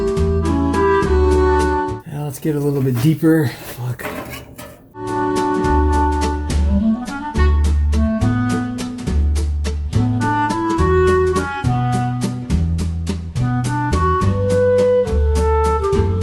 Get a little bit deeper. Fuck.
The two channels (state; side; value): identical; both; correlation 1.00